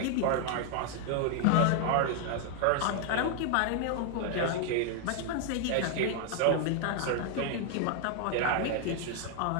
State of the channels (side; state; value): both; different; correlation 0.00